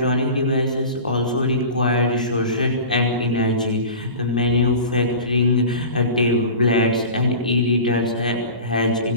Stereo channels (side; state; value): both; inverted; correlation -0.35